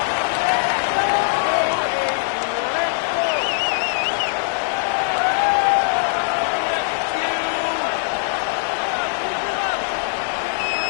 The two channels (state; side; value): silent; right; digital silence